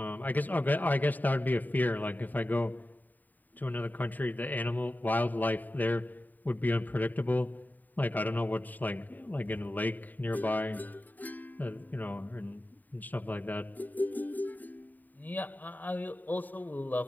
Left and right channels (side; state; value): right; late; 0.086 ms